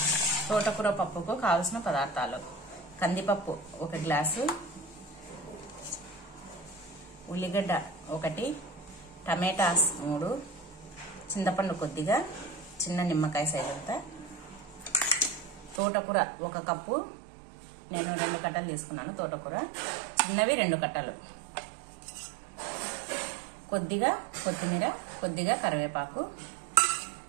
పప్పుకు కావాల్సిన పదార్థాలు: కందిపప్పు 1 గ్లాసు, ఉల్లిగడ్డ 1, టమాటాస్ 3, చింతపండు కొద్దిగా, చిన్న నిమ్మకాయ సైజ్ అంతా, తోటకూర 1 కప్పు, నేను 2 కట్టలు తీసుకున్నాను. తోటకూర చిన్నవి 2 కట్టలు, కొద్దిగా కొత్తిమీర, కొద్దిగా కరివేపాకు,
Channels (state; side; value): drops out; left; at 15.8 s